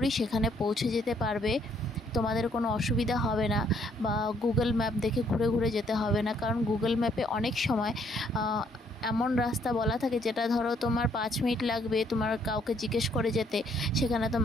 সেখানে পৌঁছে যেতে পারবে। তোমাদের কোনো অসুবিধা হবে না, বা গুগল ম্যাপ দেখে ঘুরে ঘুরে যেতে হবে না, কারণ গুগল ম্যাপে অনেক সময় এমন রাস্তা বলা থাকে যেটা ধরো তোমার 5 মিনিট লাগবে তোমার কাউকে জিজ্ঞেস করে যেতে, সেখানে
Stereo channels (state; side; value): normal; both; correlation 0.67